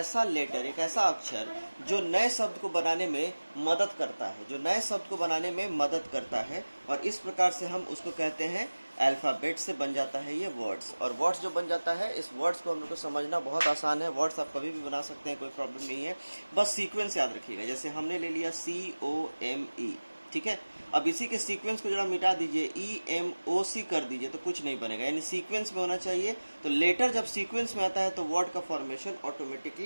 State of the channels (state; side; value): inverted; both; correlation -1.00